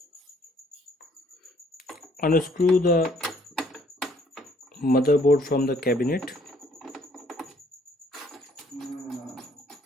Unscrew the motherboard from the cabinet.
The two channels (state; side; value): normal; both; correlation 0.63